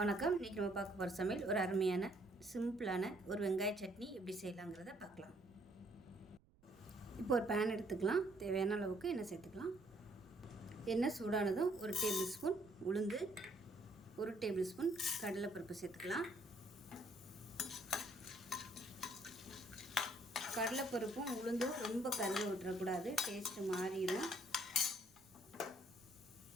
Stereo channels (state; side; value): noise; right; rumble, 29 dB below the sound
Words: இன்றைக்கி நம்ம பார்க்க போகிற சமையல் ஒரு அருமையான சிம்பிளான ஒரு வெங்காய சட்னி எப்படி செய்யலாங்கிறத பார்க்கலாம். இப்போ ஒரு பேன் எடுத்துக்கலாம். தேவையான அளவுக்கு எண்ணெய் சேர்த்துக்கலாம். எண்ணெய் சூடானதும் 1 டேபிள் ஸ்பூன் உளுந்து, 1 டேபிள் ஸ்பூன் கடலைப்பருப்பு சேர்த்துக்கலாம். கடலைப்பருப்பும் உளுந்தும் ரொம்ப கருக விட்டுறக்கூடாது, டேஸ்ட்டு மாறிடும்.